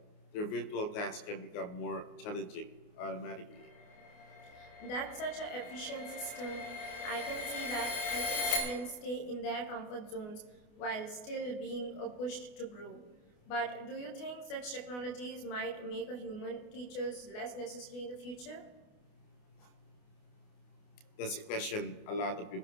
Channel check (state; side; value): late; right; 28 ms